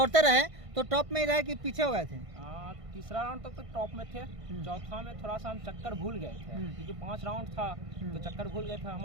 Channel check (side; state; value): left; late; 1.5 ms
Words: रहे तो टॉप में ही रहे कि पीछे हो गए थे? तीसरा राउंड तक तो टॉप में थे। चौथा में थोड़ा सा हम चक्कर भूल गए थे, क्योंकि 5 राउंड था तो चक्कर भूल गए थे। हम